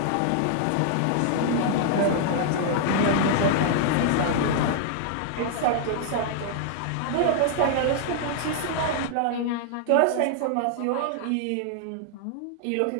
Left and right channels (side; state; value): both; different; correlation -0.01